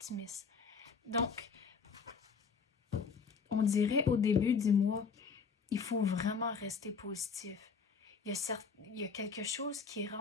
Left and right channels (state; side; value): quieter; right; 5.5 dB